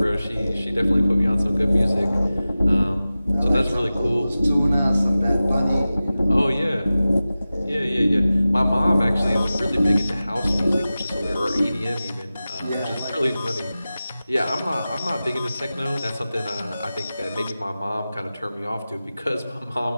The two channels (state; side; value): inverted; both; correlation -0.96